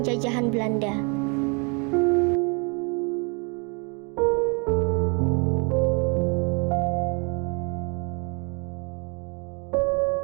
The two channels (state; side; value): quieter; left; 33.8 dB